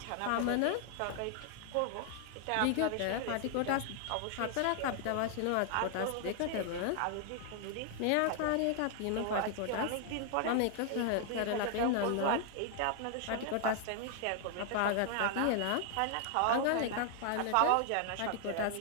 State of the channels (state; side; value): different; both; correlation 0.00